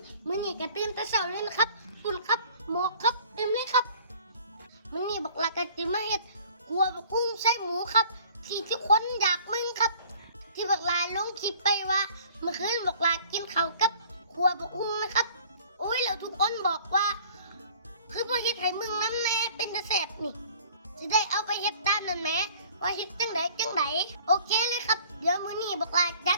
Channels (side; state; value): both; inverted; correlation -0.52